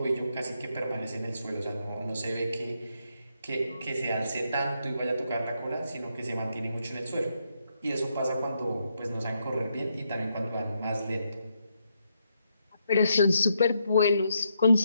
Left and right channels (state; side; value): inverted; both; correlation -0.79